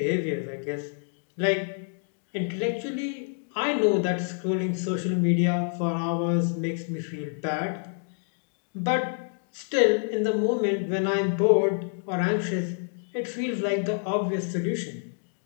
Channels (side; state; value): right; silent; 60 dB below the other